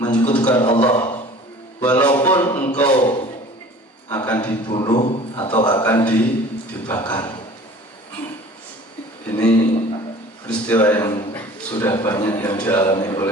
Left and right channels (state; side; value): normal; both; correlation 0.45